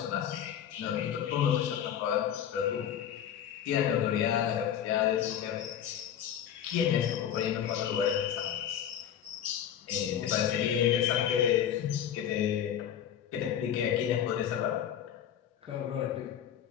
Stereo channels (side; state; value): right; quieter; 9.7 dB